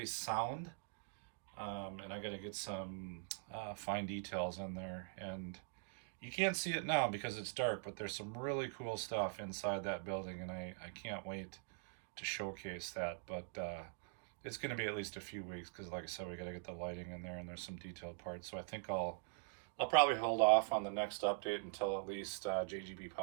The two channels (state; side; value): silent; left; digital silence